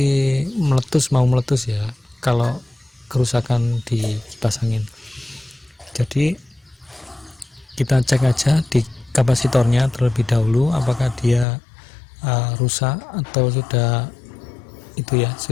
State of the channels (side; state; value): right; drops out; at 11.5 s